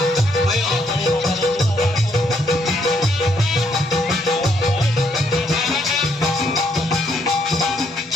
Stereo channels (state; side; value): normal; both; correlation 0.72